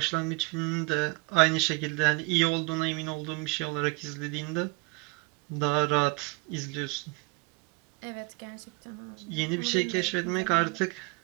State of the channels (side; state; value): left; quieter; 29.0 dB